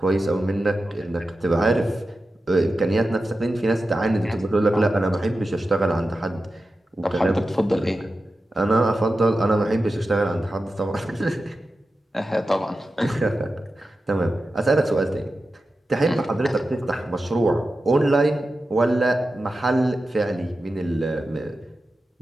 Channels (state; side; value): normal; both; correlation 0.92